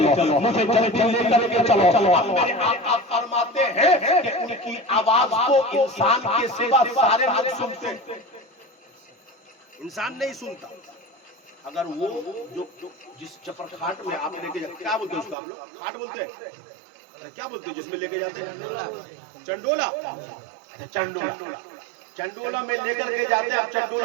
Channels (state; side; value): drops out; left; at 15.4 s